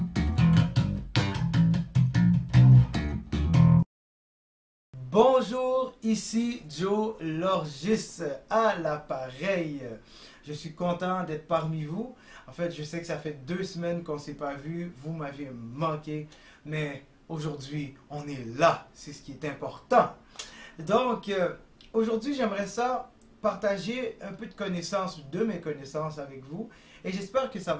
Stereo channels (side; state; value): both; identical; correlation 1.00